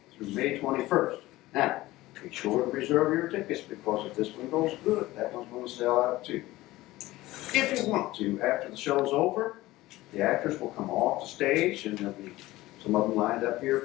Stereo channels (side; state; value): right; quieter; 17.9 dB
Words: through May 21st. Now, be sure to reserve your tickets, because if this one goes good, that one's going to sell out too. If you want to, after the show's over, the actors will come off the stage, and there'll be some of them lined up here